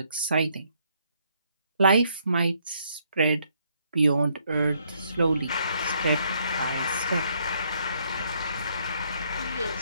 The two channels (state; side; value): inverted; both; correlation -0.71